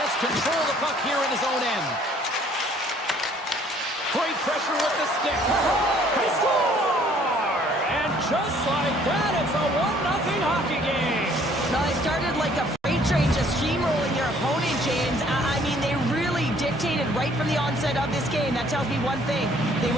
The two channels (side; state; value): both; normal; correlation 0.60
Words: control of the puck here in his own end. Great pressure with the stick. They score! And just like that, it's a 1-0 hockey game. Now, they started like a freight train just steamrolling their opponent, James. I mean, they really dictated right from the onset of this game. That tells me one thing. They